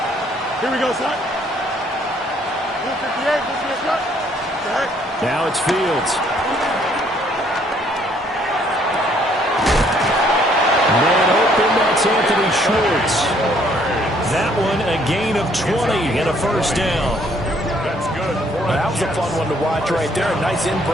Here we go, son. Move 58, move 58. Okay. Now it's Fields. Man open, that's Anthony Schwartz. That one a gain of 20 and a 1st down. That's good. That was a fun one to watch right there. A nice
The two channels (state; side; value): normal; both; correlation 0.65